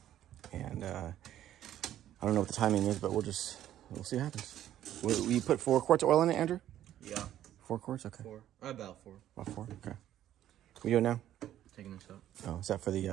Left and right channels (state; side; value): quieter; left; 12.0 dB